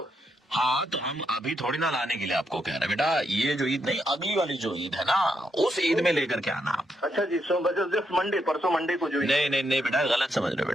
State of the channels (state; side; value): normal; both; correlation 0.80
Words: हाँ तो हम अभी थोड़ी ना लाने के लिए आपको कह रहे हैं बेटा, ये जो ईद नहीं, अगली वाली जो ईद है ना, उस ईद में लेकर के आना आप। अच्छा जी, सो जस्ट मंडे, परसों मंडे को जो नहीं बेटा, गलत समझ रहे हो